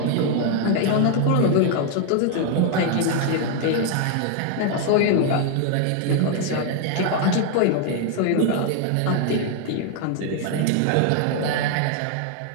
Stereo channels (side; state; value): both; different; correlation 0.00